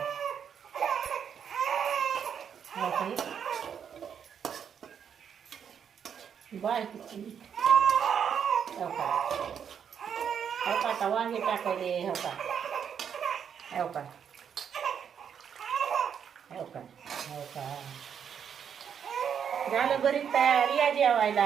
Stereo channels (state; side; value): quieter; left; 7.8 dB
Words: हो का बाय किती हो का आता वांगे टाकायले हो का हो का हो का हो का झालं बरीच तयार या जेवायला